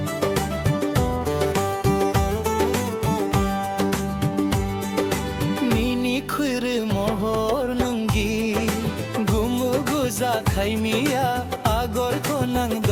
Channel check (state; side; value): identical; both; correlation 1.00